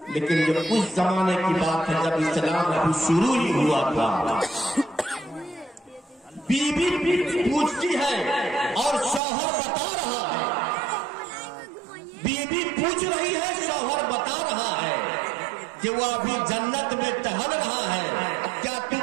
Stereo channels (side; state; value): left; drops out; at 9.2 s